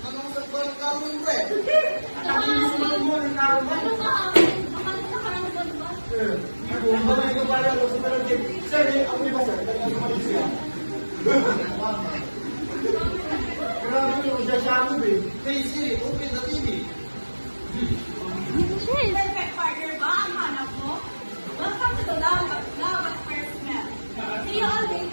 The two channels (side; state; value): both; inverted; correlation -1.00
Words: Anong sa parang karoon ba eh? Ang susunod mo ng karoon ba? Ano sa akin? Baka nakakaranggan ba? Kung ba may kapala ko sa parang tip, sir, ako di ba sir? Kaya umalis siya. Grabe yung isa-shadow eh. Hey Siri, open the TV. Perfect partner ba ang hanap mo? Welcome to the Love at First Smell. See you all